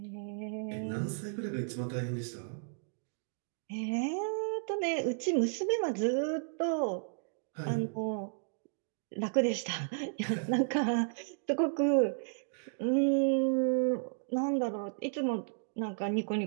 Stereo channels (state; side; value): silent; left; digital silence